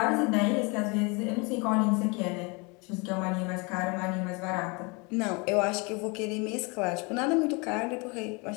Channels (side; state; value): right; quieter; 29.5 dB